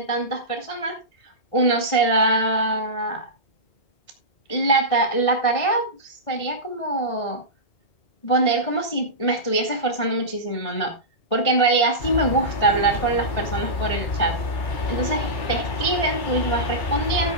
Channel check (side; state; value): right; late; 1.6 ms